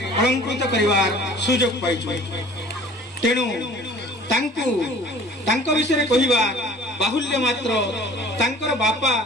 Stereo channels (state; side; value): normal; both; correlation 0.48